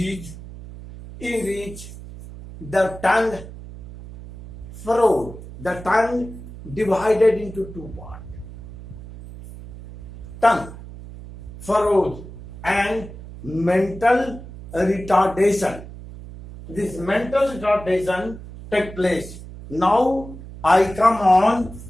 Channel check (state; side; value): noise; right; hum, 14 dB below the sound